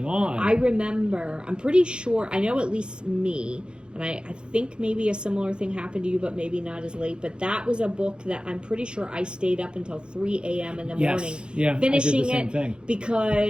on? I remember, I'm pretty sure, I know at least me, and I think maybe a similar thing happened to you, but maybe not as late, but that was a book that I'm pretty sure I stayed up until 3 a.m. in the morning finishing I did the same it thing.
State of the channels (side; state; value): left; late; 0.051 ms